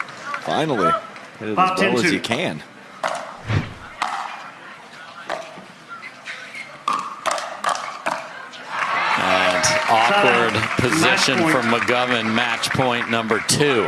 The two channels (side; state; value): both; identical; correlation 1.00